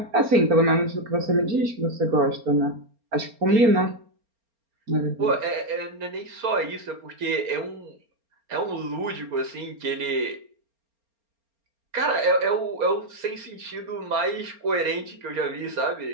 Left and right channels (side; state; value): left; late; 4.3 ms